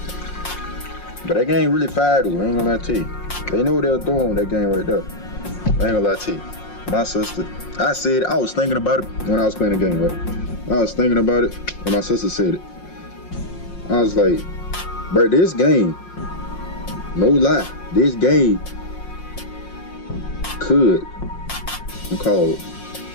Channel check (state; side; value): late; right; 5.6 ms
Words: But that game really fire though, I ain't gonna lie to you. They know what they're doing with that game right there. I ain't gonna lie to you. My sister, I was thinking about it when I was playing the game, right? I was thinking about it when my sister said it. I was like, bro, this game, no lie, this game could cause